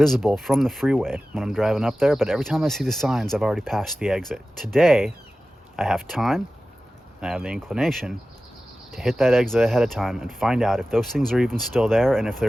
from the freeway when I'm driving up there, but every time I see the signs, I've already passed the exit. Today, I have time, and I have the inclination to hit that exit ahead of time and find out if those things are even still there and if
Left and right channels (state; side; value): normal; both; correlation 0.95